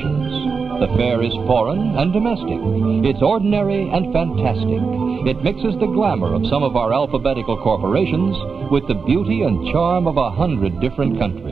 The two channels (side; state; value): left; quieter; 5.2 dB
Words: The fair is foreign and domestic. It's ordinary and fantastic. It mixes the glamour of some of our alphabetical corporations with the beauty and charm of 100 different